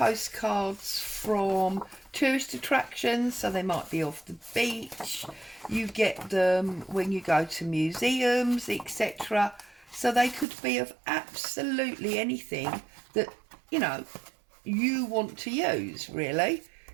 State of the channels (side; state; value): left; drops out; at 10.5 s